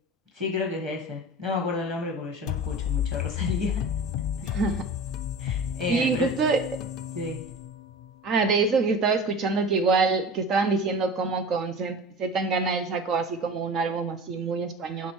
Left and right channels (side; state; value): both; normal; correlation 0.35